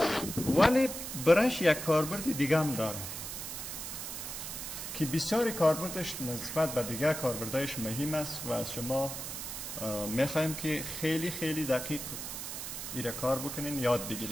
ولی برش یک کاربرد دیگه هم داره که بسیاری کاربردش نسبت به دیگه کاربردهایش مهم است و از شما میخوایم که خیلی خیلی دقیق ایره کار بکنین، یاد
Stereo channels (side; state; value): right; noise; hiss, 7 dB below the sound